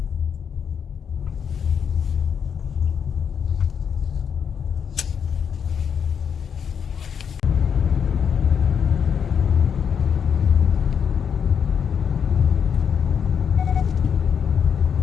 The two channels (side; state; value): right; quieter; 7.3 dB